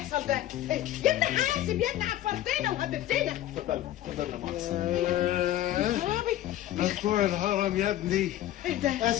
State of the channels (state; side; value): quieter; right; 13.4 dB